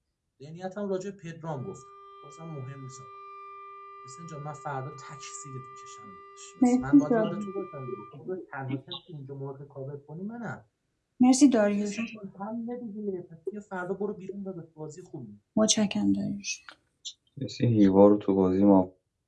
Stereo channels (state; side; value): identical; both; correlation 1.00